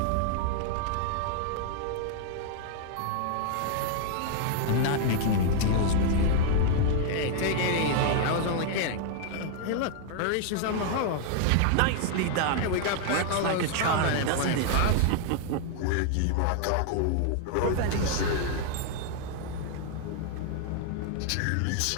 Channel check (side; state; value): both; different; correlation 0.00